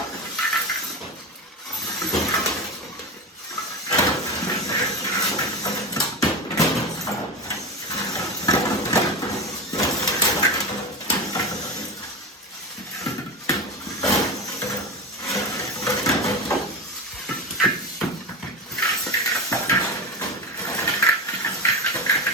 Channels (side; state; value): both; normal; correlation 0.21